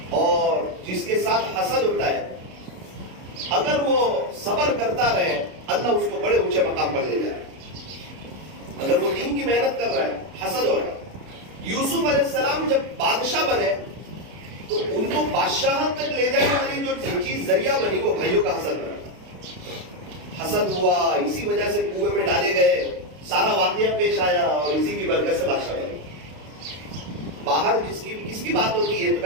اور جس کے ساتھ حسد ہوتا ہے, اگر وہ صبر کرتا رہے اللہ اس کو بڑے اونچے مقام پر لے جائے. اگر وہ دین کی محنت کر رہا ہے, حسد ہو رہا ہے. یوسف علیہ السلام جب بادشاہ بنے تو ان کو بادشاہت تک لے جانے والی جو چیز ذریعہ بنی وہ بھائیوں کا حسد بنا. حسد ہوا, اسی وجہ سے کنویں میں ڈالے گئے, سارا واقعہ پیش آیا, اور اسی کی برکت سے بادشاہ بنے. باہر کس کی بات ہوتی ہے؟ تو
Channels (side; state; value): left; late; 32 ms